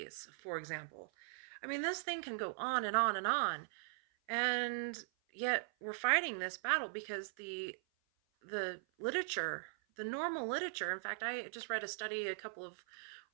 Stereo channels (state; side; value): silent; left; 51 dB below the other